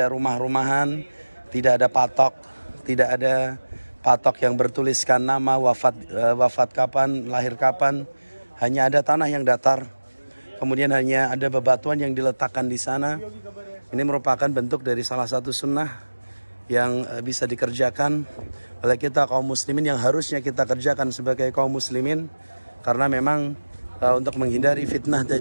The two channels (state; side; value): inverted; both; correlation -1.00